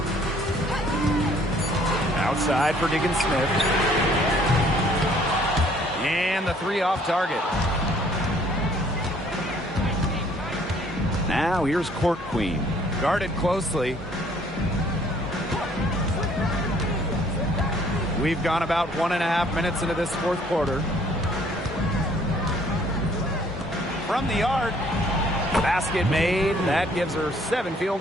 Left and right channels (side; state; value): both; normal; correlation 0.60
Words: Outside for Diggins Smith. And the three off target. Now here's Court Queen. Guarded closely. We've gone about 1.5 minutes into this fourth quarter. From the arc. Basket made. That gives her 7 field